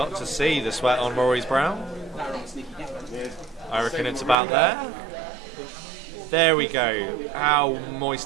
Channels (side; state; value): left; drops out; at 4.4 s